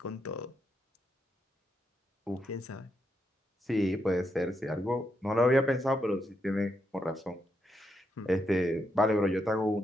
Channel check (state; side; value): normal; both; correlation 0.81